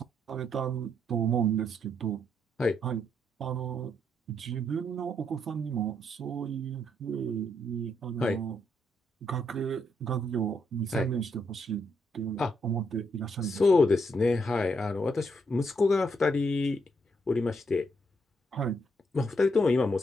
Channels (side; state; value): both; normal; correlation 0.76